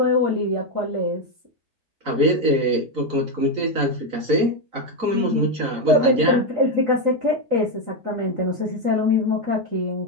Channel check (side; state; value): left; late; 3.9 ms